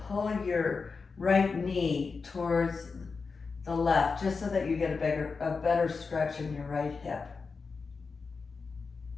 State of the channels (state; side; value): quieter; right; 4.7 dB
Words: pull your right knee towards the left, just so that you get a better stretch in your right hip.